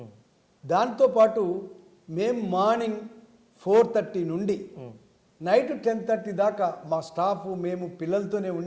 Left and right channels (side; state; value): both; identical; correlation 1.00